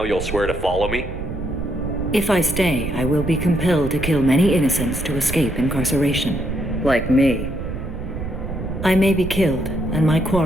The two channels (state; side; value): noise; right; rumble, 6 dB below the sound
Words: you'll swear to follow me? If I stay, I will be compelled to kill many innocents to escape incarceration. Like me. I may be killed, and my